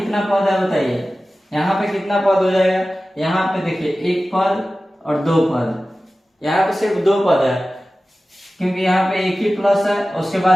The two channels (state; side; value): normal; both; correlation 0.96